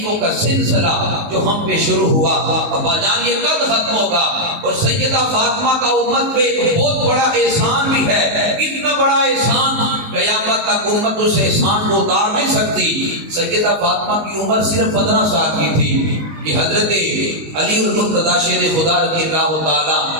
کا سلسلہ جو ہم پہ شروع ہوا ابا جان یہ کب ختم ہوگا. اور سیدہ فاطمہ کا امت پہ ایک بہت بڑا احسان بھی ہے، اتنا بڑا احسان قیامت تک امت اس احسان کو اتار نہیں سکتی. سیدہ فاطمہ کی عمر صرف 15 سال کی تھی کہ حضرت علی المرتضیٰ شیر خدا رضی اللہ تعالی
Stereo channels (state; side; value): late; left; 19 ms